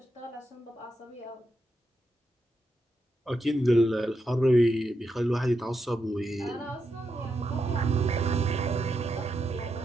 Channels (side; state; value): both; normal; correlation 0.84